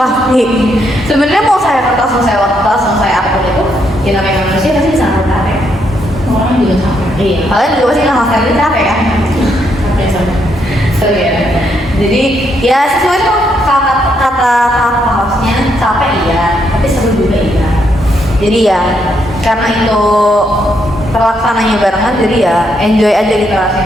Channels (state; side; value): normal; both; correlation 0.76